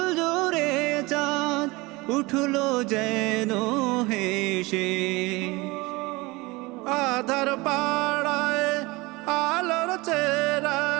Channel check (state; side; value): quieter; left; 23.2 dB